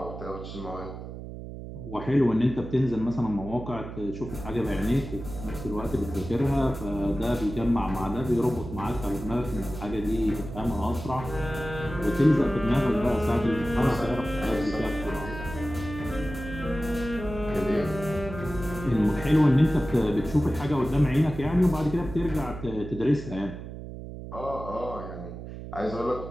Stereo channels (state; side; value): noise; right; hum, 10 dB below the sound